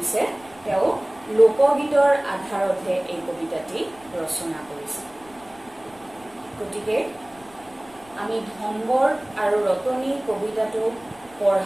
তেওঁ লোকগীতৰ আধাৰতহে এই কবিতাটি ৰচনা কৰিছে গতিকে আমি ধনবৰ আৰু ৰতনী কবিতাটো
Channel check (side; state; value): left; noise; rumble, 26 dB below the sound